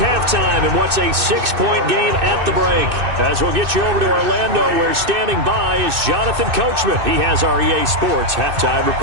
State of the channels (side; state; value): left; late; 2.6 ms